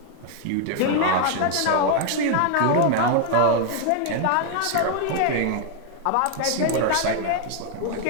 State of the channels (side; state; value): both; different; correlation 0.00